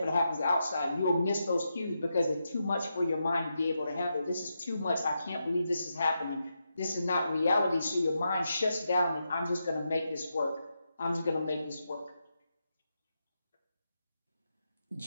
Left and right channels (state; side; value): inverted; both; correlation -0.86